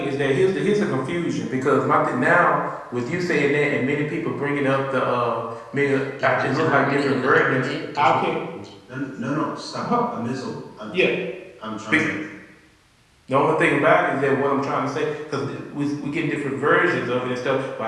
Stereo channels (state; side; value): identical; both; correlation 1.00